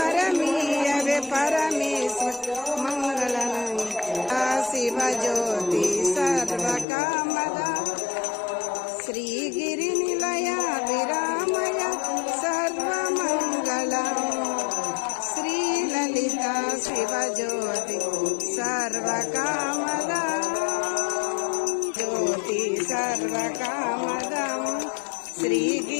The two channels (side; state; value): right; drops out; at 6.9 s